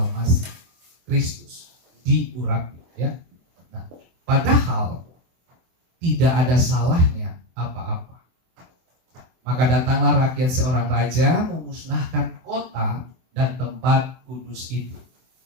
Kristus. Diurapi, ya. Nah, padahal tidak ada salahnya apa-apa. Maka datanglah rakyat seorang raja memusnahkan kota dan tempat kudus itu.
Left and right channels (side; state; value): left; late; 24 ms